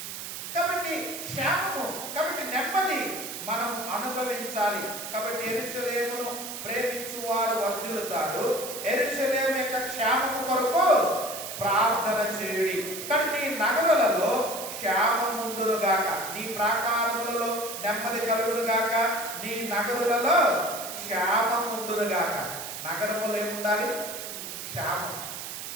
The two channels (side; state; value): right; noise; hiss, 8 dB below the sound